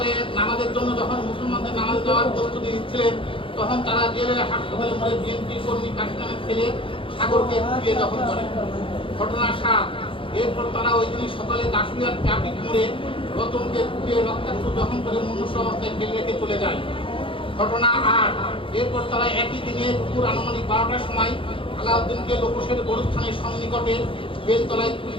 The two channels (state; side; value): late; right; 0.25 ms